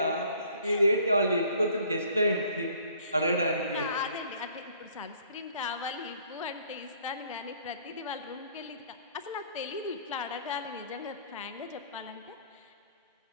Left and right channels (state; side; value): inverted; both; correlation -0.57